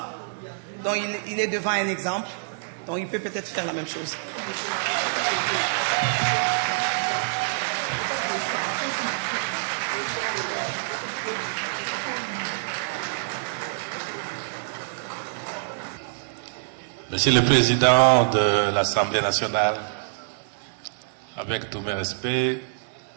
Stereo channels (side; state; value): left; silent; digital silence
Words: Donc il est devant un exemple. Donc il peut peut-être faire la même chose. Monsieur le Président de l'Assemblée nationale, avec tous mes respects,